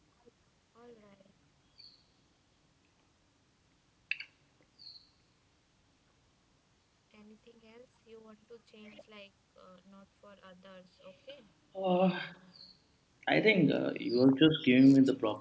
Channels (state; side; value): identical; both; correlation 1.00